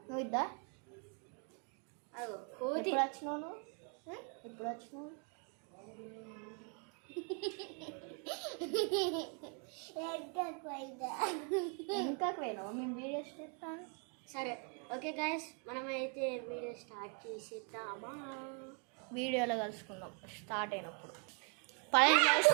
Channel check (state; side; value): quieter; left; 36.9 dB